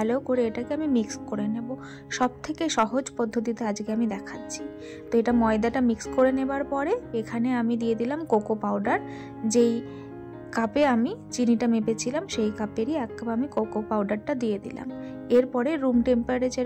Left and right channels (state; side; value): identical; both; correlation 1.00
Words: করে এটাকে আমি মিক্স করে নেব। সব থেকে সহজ পদ্ধতিতে আজকে আমি দেখাচ্ছি। তো এটা ময়দাটা মিক্স করে নেবার পরে এখানে আমি দিয়ে দিলাম কোকো পাউডার। যেই কাপে আমি চিনিটা মেপেছিলাম সেই কাপেরই 1 কাপ আমি কোকো পাউডারটা দিয়ে দিলাম। এরপরে রুম